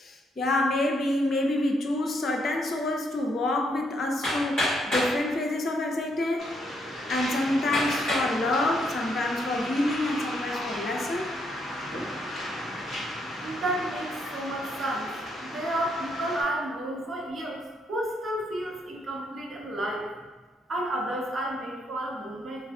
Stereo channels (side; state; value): both; normal; correlation 0.74